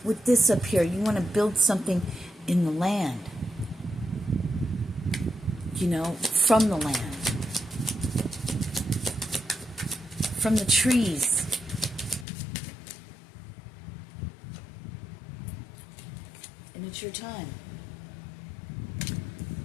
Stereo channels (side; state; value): right; drops out; at 12.2 s